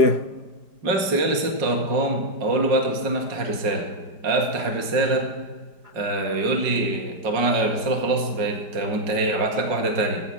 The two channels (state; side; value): late; left; 5.0 ms